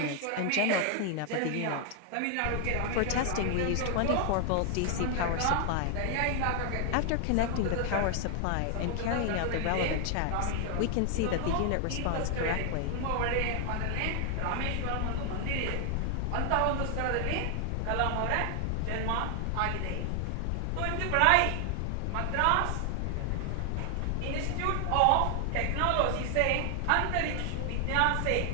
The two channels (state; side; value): different; both; correlation 0.00